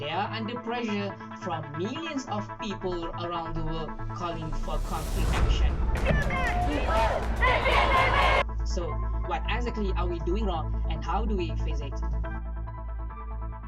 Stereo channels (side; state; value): both; identical; correlation 1.00